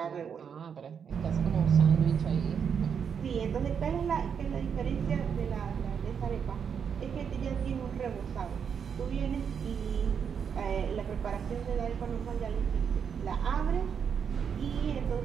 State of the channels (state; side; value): quieter; left; 7.1 dB